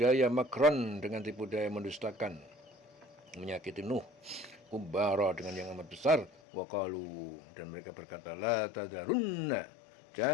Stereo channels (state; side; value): drops out; right; at 6.3 s